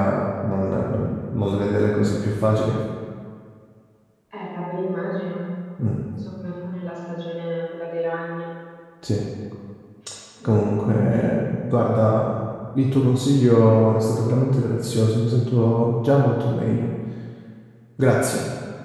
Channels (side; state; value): both; identical; correlation 1.00